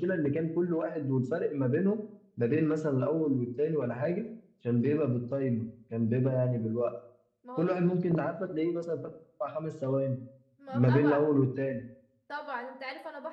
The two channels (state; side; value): identical; both; correlation 1.00